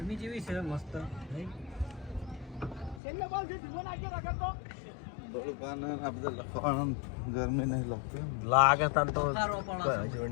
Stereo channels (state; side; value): drops out; right; at 3.0 s